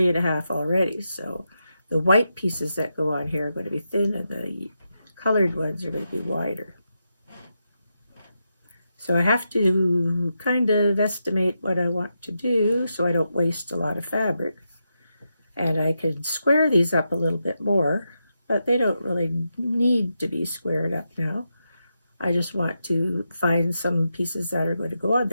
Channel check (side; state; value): both; inverted; correlation -0.86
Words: already. So the white pieces that go on here are going to be thin, and the colored ones are going to be wider. So I have to kind of estimate what I want to do so I don't waste a lot of fabric. And I could square these up a little bit more, but they don't really need to be squared up now. I just want to find some pieces that are going to go on